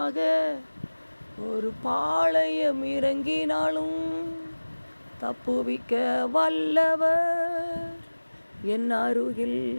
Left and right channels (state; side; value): inverted; both; correlation -1.00